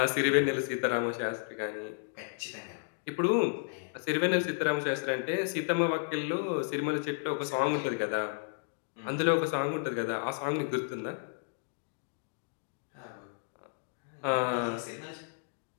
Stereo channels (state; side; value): silent; right; digital silence